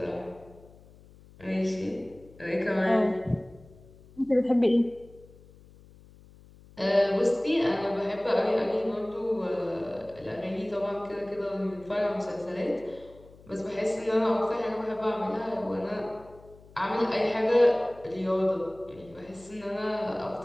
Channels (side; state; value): left; noise; hum, 23 dB below the sound